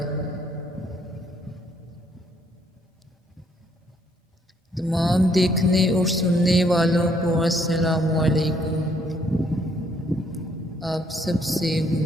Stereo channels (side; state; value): both; normal; correlation 0.68